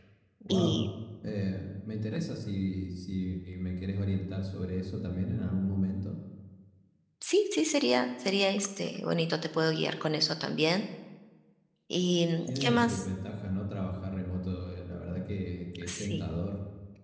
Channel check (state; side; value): identical; both; correlation 1.00